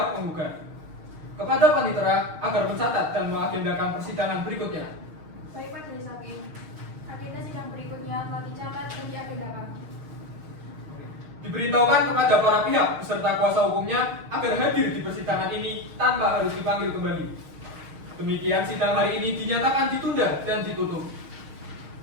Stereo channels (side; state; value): left; late; 6.4 ms